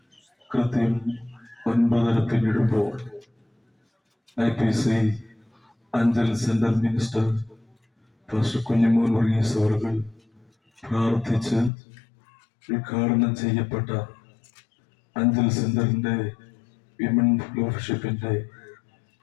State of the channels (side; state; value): right; drops out; at 11.7 s